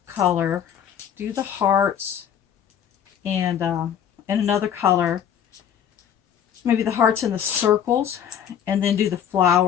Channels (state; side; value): quieter; right; 9.0 dB